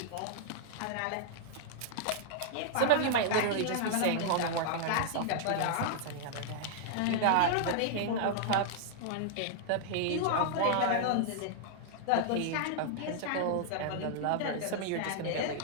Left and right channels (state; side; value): different; both; correlation -0.01